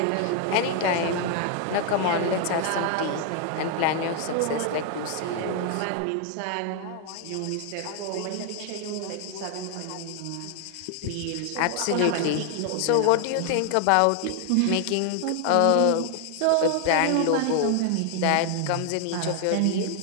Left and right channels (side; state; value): both; different; correlation 0.00